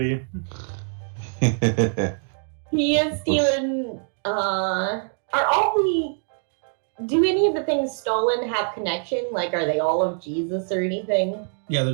you? He is stealing. Are all the? Do any of the things stolen have connection? Like, are they all of Jesus or anything? Yeah,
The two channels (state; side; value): silent; left; 56 dB below the other